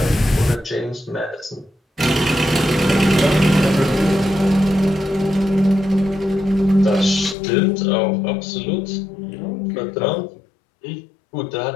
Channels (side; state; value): right; drops out; at 7.4 s